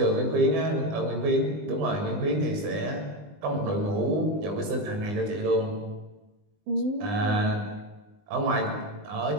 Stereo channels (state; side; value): late; left; 20 ms